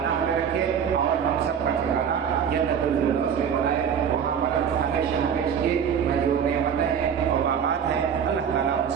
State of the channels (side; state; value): left; quieter; 7.7 dB